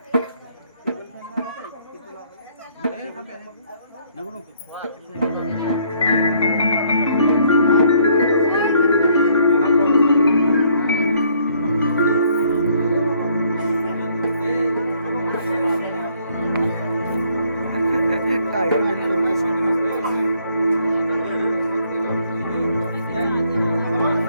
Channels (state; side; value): inverted; both; correlation -0.66